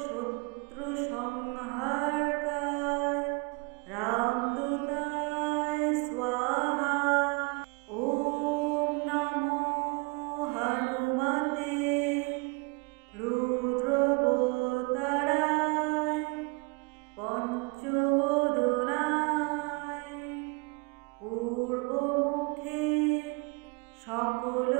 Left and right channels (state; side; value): quieter; left; 29.3 dB